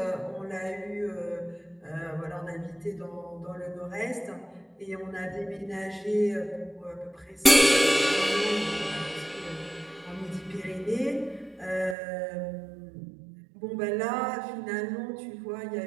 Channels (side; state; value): left; drops out; at 12.0 s